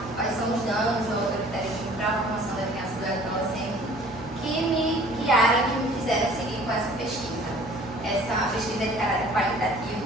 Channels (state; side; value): normal; both; correlation 0.51